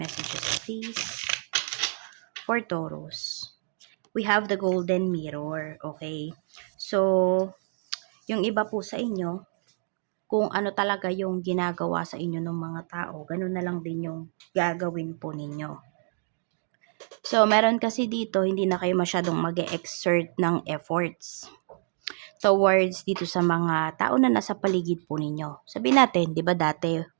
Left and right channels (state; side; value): silent; left; digital silence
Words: please. For Taurus, we have the golden mirror, okay? So, yung iba po sa inyo, kung ano talaga yung ginagawa sa inyo ng mga tao, ganun na lang din yung gagawin po ninyo. So, meron kasi dito, hindi na kayo masyadong mag-exert ng efforts towards dito sa mga tao na nasa paligid po ninyo. Sabihin natin, 'di ba dati